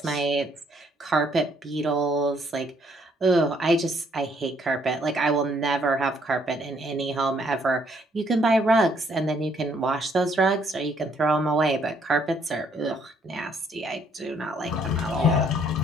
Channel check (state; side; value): normal; both; correlation 0.67